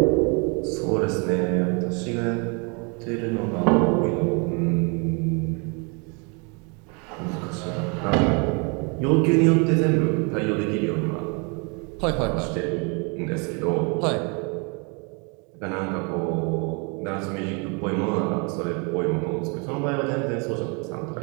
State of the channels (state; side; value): quieter; left; 33.4 dB